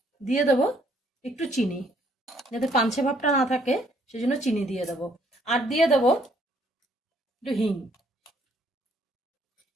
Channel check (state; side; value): normal; both; correlation 0.66